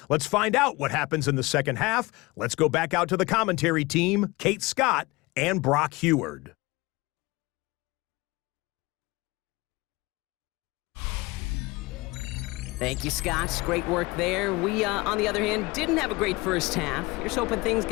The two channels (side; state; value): right; quieter; 22.8 dB